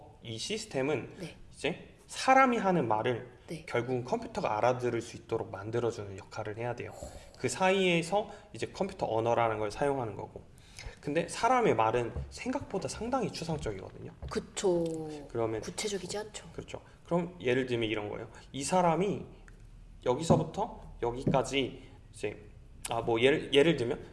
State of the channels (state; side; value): identical; both; correlation 1.00